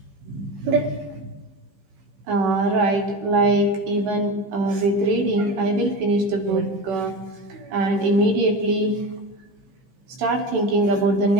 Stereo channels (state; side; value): late; left; 16 ms